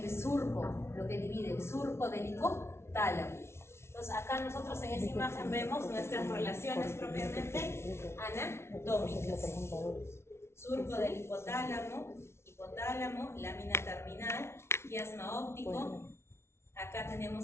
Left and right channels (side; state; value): right; late; 0.13 ms